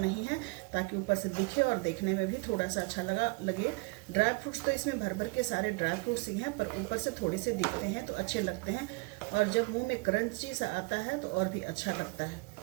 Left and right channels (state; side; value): quieter; left; 28.2 dB